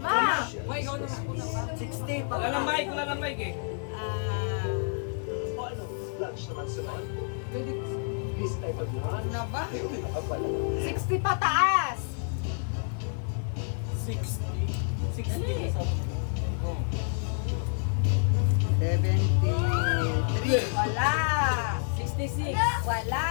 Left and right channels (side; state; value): right; silent; 59 dB below the other